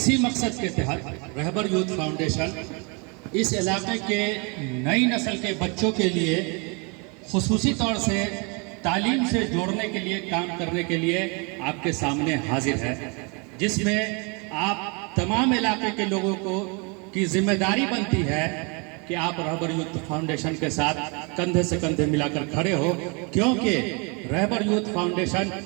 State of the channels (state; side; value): quieter; left; 32.4 dB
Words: مقصد کے تحت رہبر یوتھ فاؤنڈیشن اس علاقے کے نئی نسل کے بچوں کے لیے خصوصی طور سے تعلیم سے جوڑنے کے لیے کام کرنے کے لیے آپ کے سامنے حاضر ہے، جس میں آپ تمام علاقے کے لوگوں کی ذمہ داری بنتی ہے کہ آپ رہبر یوتھ فاؤنڈیشن کے ساتھ کندھے سے کندھے ملا کر کھڑے ہو، کیونکہ رہبر یوتھ فاؤنڈیشن